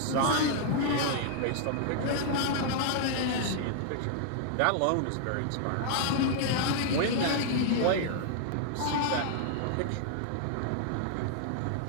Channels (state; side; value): different; both; correlation -0.01